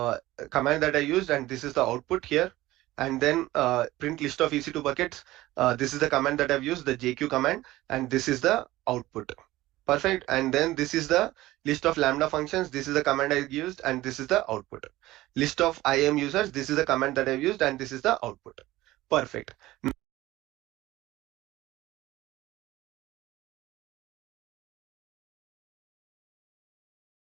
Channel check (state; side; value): quieter; left; 17.1 dB